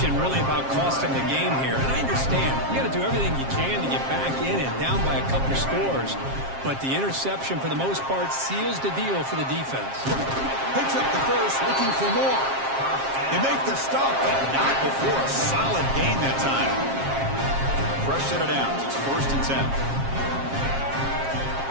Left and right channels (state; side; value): late; left; 7.5 ms